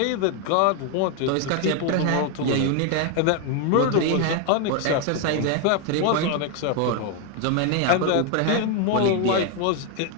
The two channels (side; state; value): both; different; correlation 0.01